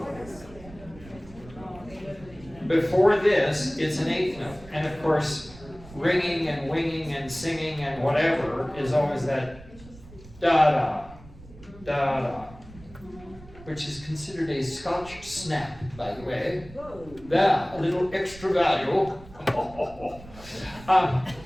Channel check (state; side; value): noise; right; rumble, 19 dB below the sound